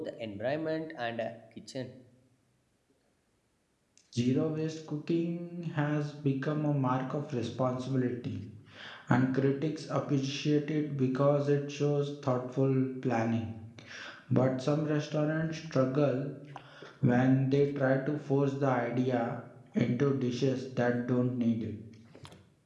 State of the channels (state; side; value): identical; both; correlation 1.00